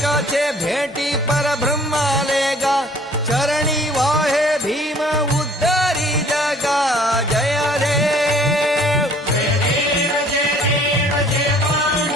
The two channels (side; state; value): both; normal; correlation 0.55